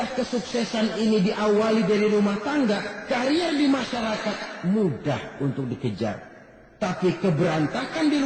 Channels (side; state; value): both; identical; correlation 1.00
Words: kesuksesan ini diawali dari rumah tangga, karier di masyarakat mudah untuk dikejar. Tapi keberantakan di